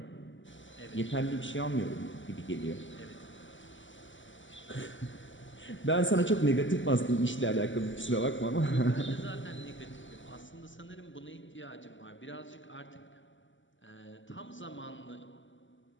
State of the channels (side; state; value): right; late; 0.55 ms